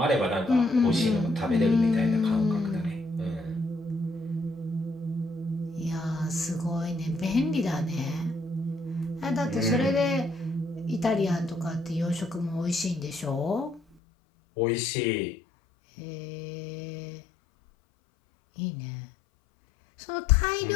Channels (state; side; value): drops out; right; at 13.8 s